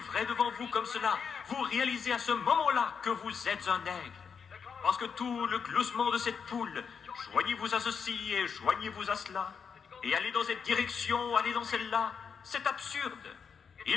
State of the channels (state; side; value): quieter; right; 6.4 dB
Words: devant vous comme cela, vous réalisez à ce moment-là que vous êtes un aigle. Parce que tout le gloussement de cette poule, joignez-vous à ceci et joignez-vous à cela, et allez dans cette direction, allez dans celle-là, c'est absurde.